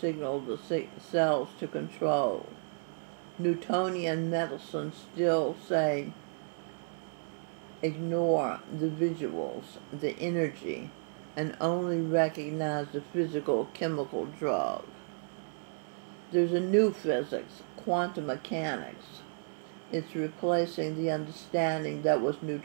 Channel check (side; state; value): left; silent; 56 dB below the other